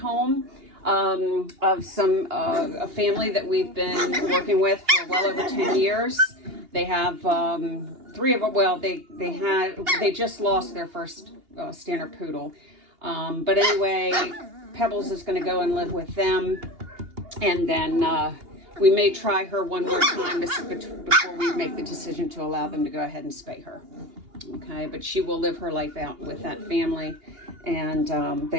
of a family that we've been working with for well over 10 years. They have 3 of them. Well, they just lost their first standard poodle. But anyway, Pebbles is going to go and live with them, and then we may try her one more time before we make the decision to allow them to go ahead and spay her. Okay, but she will live her life out with that family, and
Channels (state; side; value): late; left; 2.8 ms